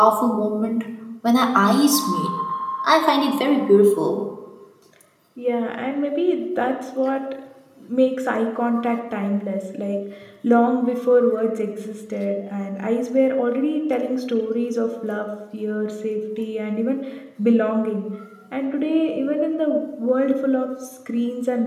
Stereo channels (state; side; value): identical; both; correlation 1.00